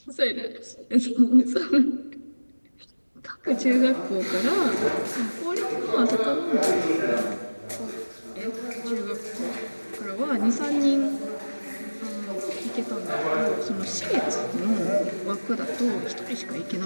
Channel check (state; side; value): inverted; both; correlation -1.00